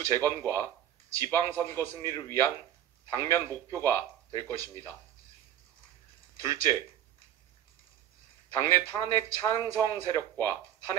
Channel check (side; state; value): left; quieter; 11.0 dB